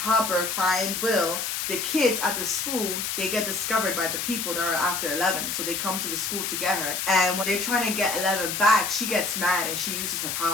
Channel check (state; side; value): noise; left; hiss, 2 dB below the sound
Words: find Will, the kids at the school, they get discovered by the people that are after 11. So they come to the school to get her. And when they're trying to get 11 back, she gets mad and she uses her